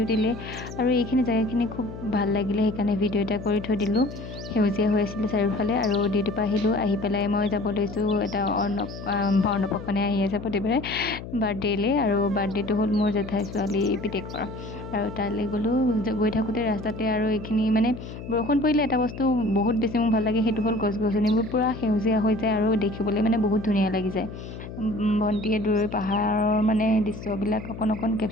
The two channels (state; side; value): noise; left; hum, 11 dB below the sound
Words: আৰু এইখিনি জেগাখিনি খুব ভাল লাগিলে, সেইকাৰণে ভিডিও এটা কৰি থৈ দিলোঁ। সেউজীয়া হৈ আছিলে চাৰিওফালে আৰু ডিউটিৰ পৰা আহিলোঁ। আহি পেলাই মই যাব লৈছোঁ এটা অন্নপ্ৰশনে আহি আছে প্ৰতিবাৰে বাৰ্থডেলৈ, আৰু বাৰ্থডেটো হ'ল মোৰ জেঠাই ছোৱালী পিতেকৰ। আৰু তালৈ গ'লোঁ। গৈ থাকোঁতে ৰাস্তাতে আৰু এইখিনি মানে বৰষুণ পৰিলে এটা বস্তু বহুত বেছি মোৰ ভাল লাগে, সেইটো হ'ল গছ-গছনিবোৰ পূৰা সেউজীয়া হৈ যায় আৰু দেখিবলৈ মানে বহুত ধুনীয়া লাগি যায়। ভণ্টিয়ে দূৰৈৰ পাহাৰৰ মানে দৃশ্যবিলাক অকণ